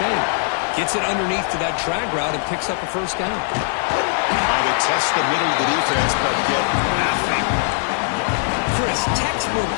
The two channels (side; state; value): right; silent; 65 dB below the other